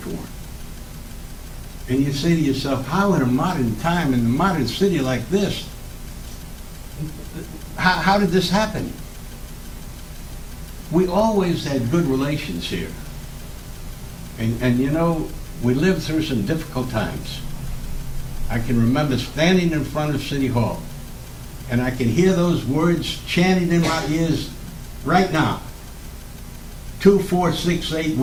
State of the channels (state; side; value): identical; both; correlation 1.00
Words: And you say to yourself, how in a modern time, in a modern city like this, how did this happen? We always had good relations here. And you know, we lived through some difficult times. I can remember standing in front of City Hall, and I can hear those words chanted in my ears right now. 2468,